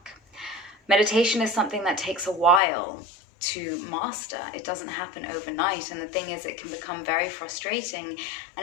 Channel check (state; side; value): drops out; right; at 2.6 s